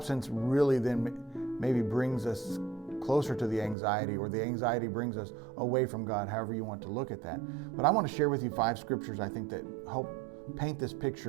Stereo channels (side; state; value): left; drops out; at 3.8 s